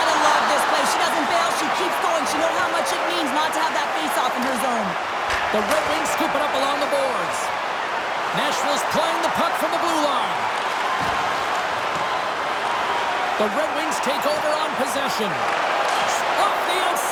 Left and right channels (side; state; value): both; identical; correlation 1.00